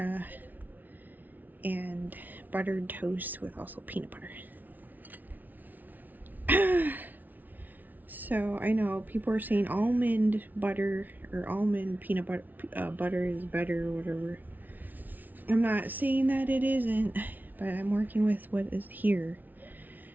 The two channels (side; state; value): left; late; 0.082 ms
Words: and buttered toast with also peanut butter. So I know people are saying almond butter or almond peanut butter butter is better or whatever. I'm not saying that it isn't, but I'm working with what is here.